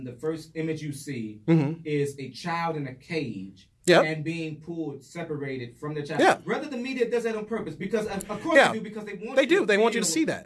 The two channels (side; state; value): both; identical; correlation 1.00